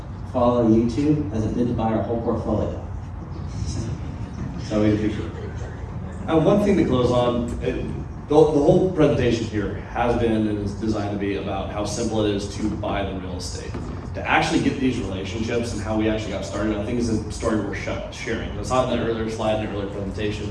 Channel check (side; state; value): both; identical; correlation 1.00